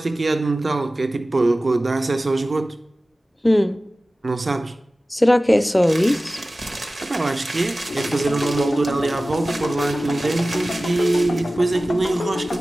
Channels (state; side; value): normal; both; correlation 0.96